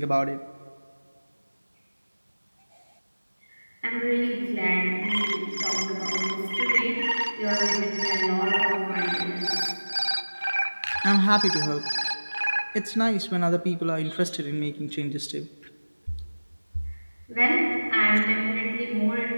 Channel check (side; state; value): both; inverted; correlation -1.00